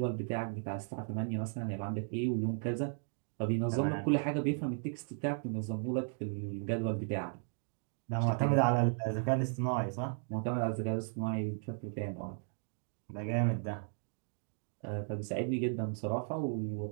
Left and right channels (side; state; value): left; silent; 54 dB below the other